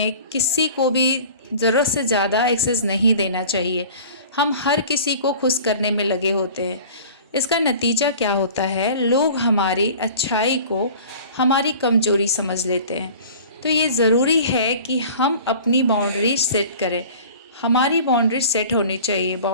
किसी को भी ज़रूरत से ज़्यादा एक्सेस नहीं देना चाहिए। हम हर किसी को खुश करने में लगे होते हैं। इसका नतीजा क्या होता है, लोग हमारी अच्छाई को हमारी कमज़ोरी समझ लेते हैं। तो ये ज़रूरी है कि हम अपनी बाउंड्री सेट करें। हमारी बाउंड्री सेट होनी चाहिए।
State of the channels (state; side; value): inverted; both; correlation -0.43